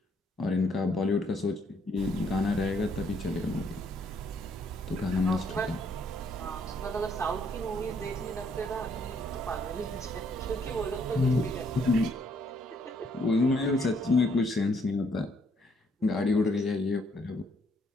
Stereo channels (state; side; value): normal; both; correlation 0.68